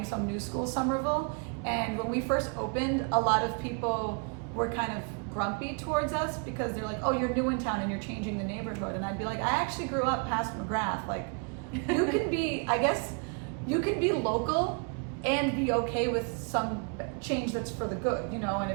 some new school Somerville. And when we first opened, a lot of people were kind of grumpy towards us because they're like, "Oh, you're new in town and you're changing the neighborhood." And I'd be like, "I actually grew up past McGrath. Like, you can be, I guess, you can be local and be okay with some change that's for the good, you know, and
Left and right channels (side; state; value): left; quieter; 38.7 dB